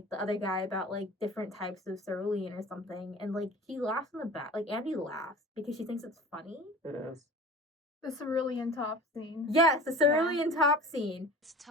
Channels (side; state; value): both; normal; correlation 0.39